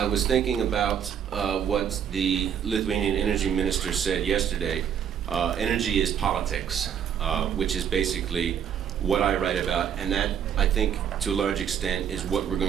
was thinking about what the Lithuanian energy minister said yesterday. Energy is politics, which is basically what I write about, and that, I think, to a large extent, is what we're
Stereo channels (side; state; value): left; quieter; 8.6 dB